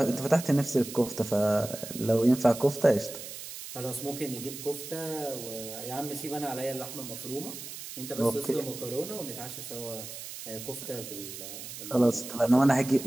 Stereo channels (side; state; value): right; noise; hiss, 10 dB below the sound